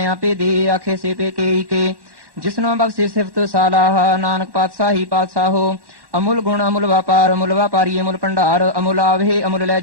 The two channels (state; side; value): late; left; 1.1 ms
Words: ਆਪੇ ਦੇ। ਆਖੇ ਸੇ ਪੇ ਕੇ ਕੇ, ਜਿਸਨੋ ਬਖਸ਼ੇ ਸਿਫਤ ਸਾਲਾਹ। ਨਾਨਕ ਪਾਤਸ਼ਾਹੀ ਪਾਤਸ਼ਾਹੋ, ਅਮੁਲ ਗੁਣ ਅਮੁਲ ਵਪਾਰ। ਅਮੁਲ ਵਪਾਰੀ ਅਮੁਲ ਭੰਡਾਰ, ਅਮੁਲ ਆਵਹਿ ਅਮੁਲ ਲੈ